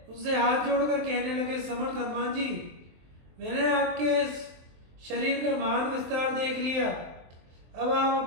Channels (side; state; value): left; late; 23 ms